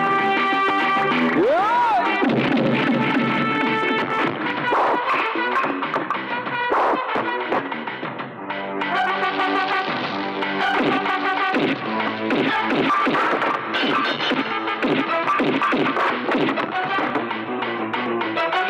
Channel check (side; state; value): both; identical; correlation 1.00